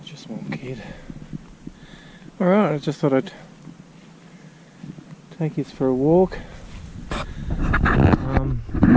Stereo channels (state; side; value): identical; both; correlation 1.00